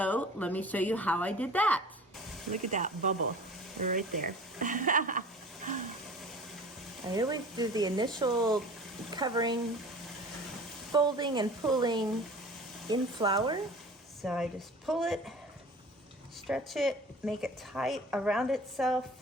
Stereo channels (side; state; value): both; normal; correlation 0.42